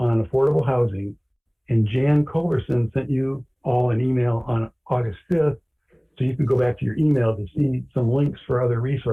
affordable housing. And Jan Culverson sent you all an email on August 5th, so you can go back to your email to see some links for other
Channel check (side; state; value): both; identical; correlation 1.00